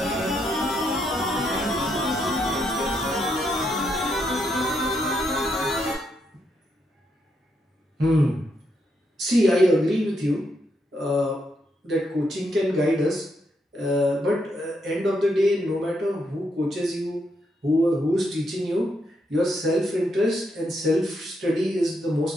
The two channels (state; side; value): normal; both; correlation 0.79